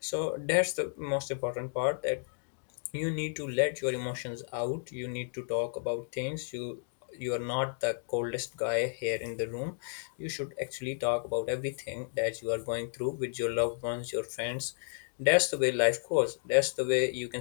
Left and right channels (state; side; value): silent; right; digital silence